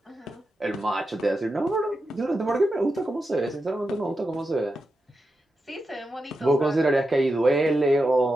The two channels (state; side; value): normal; both; correlation 0.89